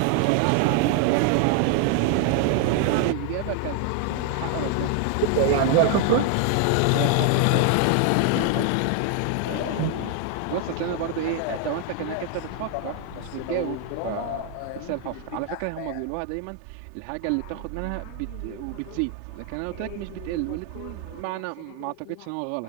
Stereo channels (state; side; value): different; both; correlation 0.00